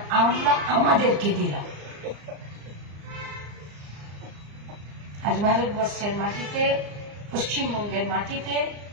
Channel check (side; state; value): left; late; 34 ms